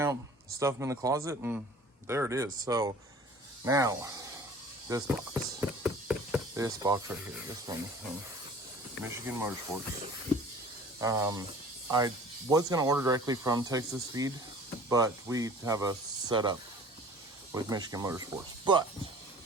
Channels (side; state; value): both; normal; correlation 0.46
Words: stuff them in the closet, and there it is. So now, this box right here, this one from Michigan Motorsports. I was going to order directly from Texas Feed, but we have a setup with Michigan Motorsports. But